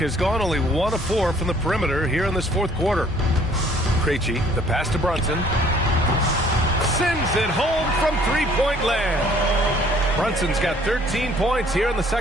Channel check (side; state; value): both; normal; correlation 0.58